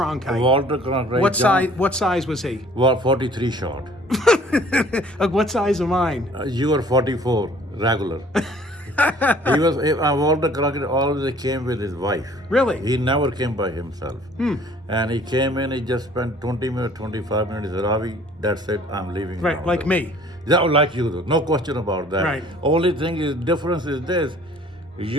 Walter Cronkite. What size was he? Well, 43 short. What size am I? You were 44 regular. He was Walter Cronkite always came with his wife. Really? He never came by himself. And he came in, he just spent 20 minutes, 25 minutes. He said, Ravi, that's it, I'm leaving Right, now. like me. Yeah, like you do. No question about that. Right. Only thing is, difference is this.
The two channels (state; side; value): normal; both; correlation 0.54